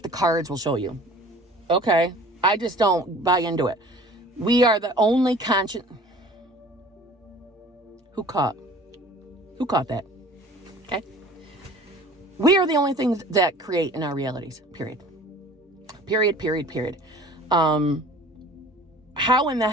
cards will show you. Okay. I just don't buy into it. We are the only conscious. Who caught that? Okay. We are the only things that create in our realities. Period. How in the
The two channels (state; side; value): normal; both; correlation 0.46